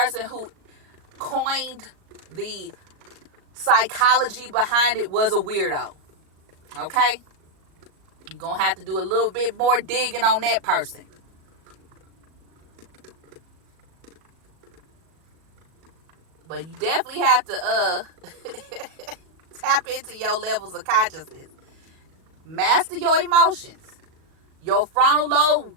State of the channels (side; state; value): left; late; 38 ms